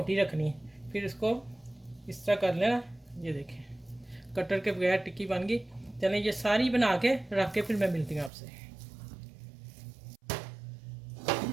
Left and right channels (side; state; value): left; drops out; at 8.3 s